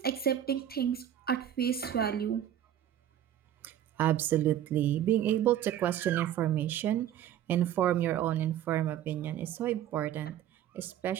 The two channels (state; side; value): quieter; left; 11.0 dB